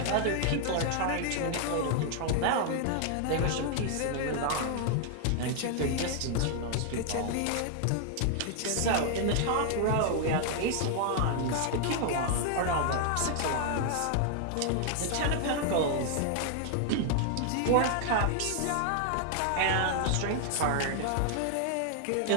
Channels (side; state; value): both; different; correlation 0.00